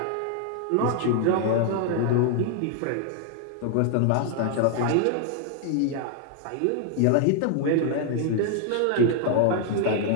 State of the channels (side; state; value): both; different; correlation 0.00